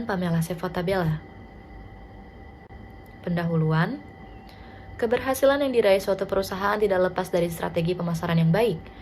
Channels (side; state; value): both; identical; correlation 1.00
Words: Pamela Sefotabella. Pendahuluan, keberhasilan yang diraih suatu perusahaan tidak lepas dari strategi pemasaran yang baik.